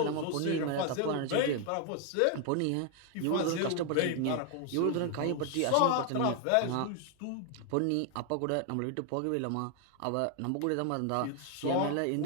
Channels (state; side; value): different; both; correlation 0.00